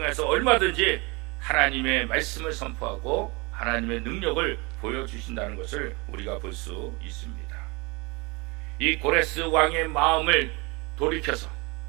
얼마든지 하나님의 말씀을 선포하고 하나님의 능력을 보여주신다는 것을 우리가 볼 수 있습니다. 이 고레스 왕의 마음을 돌이켜서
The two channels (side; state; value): left; quieter; 27.5 dB